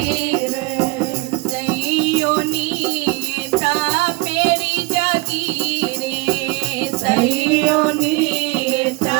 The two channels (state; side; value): quieter; left; 24.5 dB